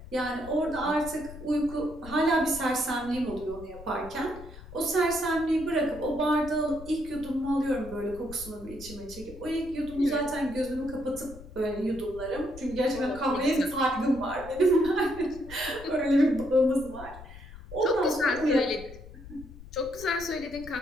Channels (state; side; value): noise; left; rumble, 16 dB below the sound